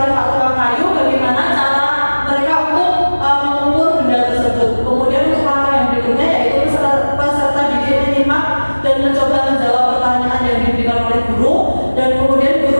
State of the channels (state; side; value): inverted; both; correlation -1.00